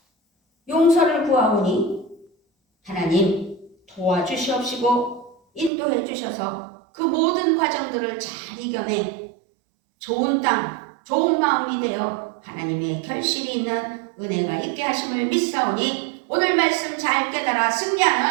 용서를 구하오니 하나님 도와주시옵시고 인도해 주셔서 그 모든 과정들을 잘 이겨내 좋은 땅, 좋은 마음이 되어 하나님의 결실이 있는 은혜가 있게 하심을 믿사오니 오늘 말씀 잘 깨달아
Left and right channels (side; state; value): left; drops out; at 5.7 s